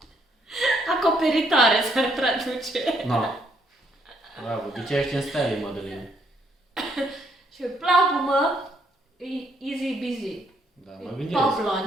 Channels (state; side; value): normal; both; correlation 0.71